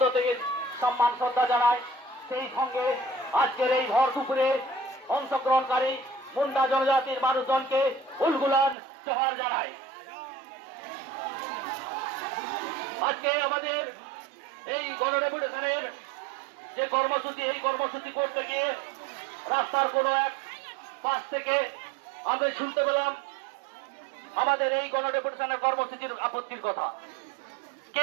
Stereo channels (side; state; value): left; drops out; at 8.8 s